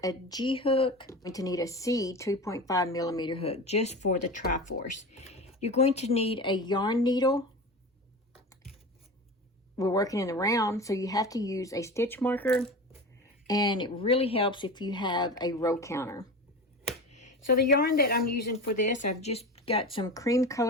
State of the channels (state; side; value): normal; both; correlation 0.29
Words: a G hook. You're going to need a C 2.5 millimeter hook just for the Triforce. You're going to need a yarn needle. We're working in the round, so you have to use a stitch marker, and it really helps if you have a row counter. So the yarn that I'm using for this, I've just got some cream